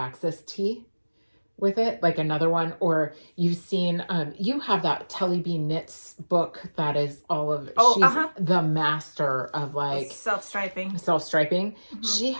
tee with it, like another one. Or you've seen, you have that Telly B Knits book that is all of, she's the master of like self-striping. Mm-hmm. She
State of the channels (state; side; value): inverted; both; correlation -1.00